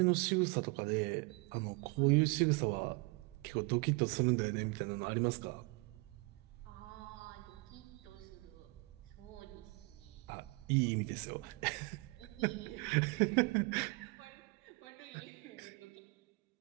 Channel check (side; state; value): left; quieter; 27.3 dB